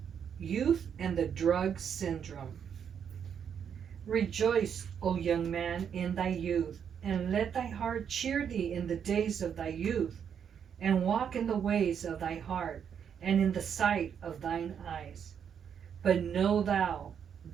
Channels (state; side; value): quieter; left; 7.9 dB